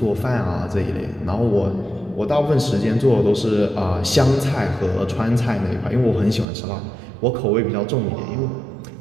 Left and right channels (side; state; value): left; drops out; at 6.5 s